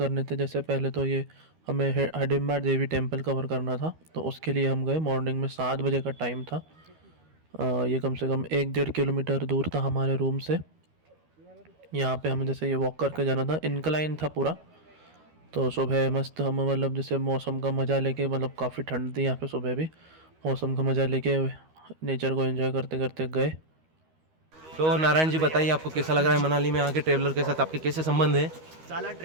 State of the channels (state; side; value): late; left; 13 ms